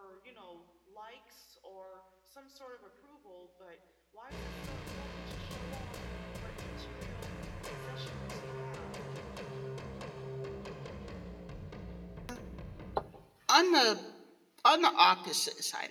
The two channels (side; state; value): both; identical; correlation 1.00